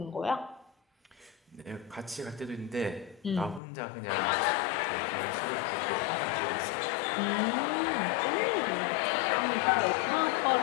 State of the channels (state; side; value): drops out; right; at 3.6 s